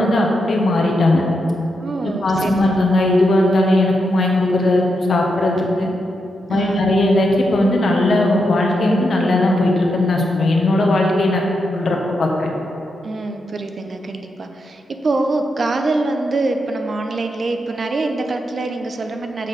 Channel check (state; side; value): normal; both; correlation 0.84